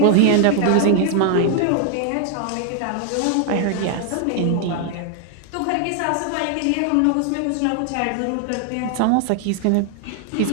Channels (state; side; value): different; both; correlation 0.00